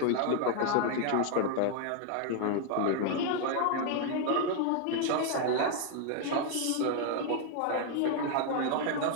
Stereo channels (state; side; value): different; both; correlation 0.00